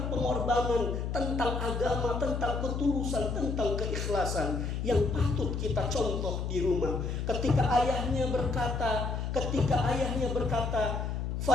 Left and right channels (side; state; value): left; noise; hum, 2 dB below the sound